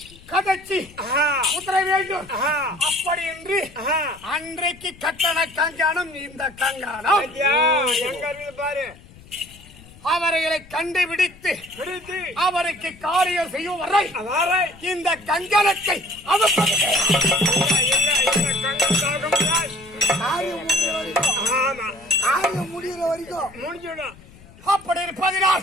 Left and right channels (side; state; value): left; noise; rumble, 22 dB below the sound